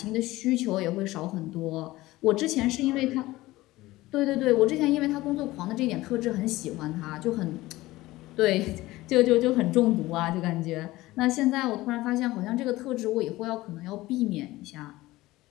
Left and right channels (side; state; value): right; quieter; 18.2 dB